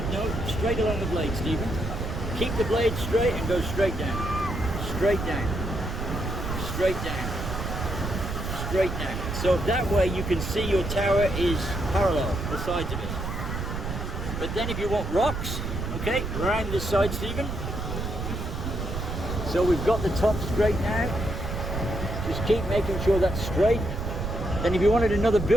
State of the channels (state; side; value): noise; right; rumble, 4 dB below the sound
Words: know straight along the blade, Stephen. Keep the blade straight and go straight down. Straight down. Straight down. Straight down. So that way you can see your tower is parallel, the sides of it. But then if you want rocks, okay, around this side, Stephen. So we've got the top straight now. Just keep making sure that's straight. Then if you wanted another